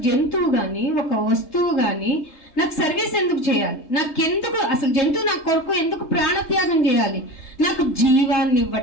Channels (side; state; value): right; late; 3.3 ms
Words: జంతువు కానీ ఒక వస్తువు కానీ నాకు సర్వీస్ ఎందుకు చేయాలి? నాకెందుకు అసలు జంతువు నా కొరకు ఎందుకు ప్రాణత్యాగం చేయాలి? నాకు జీవాన్ని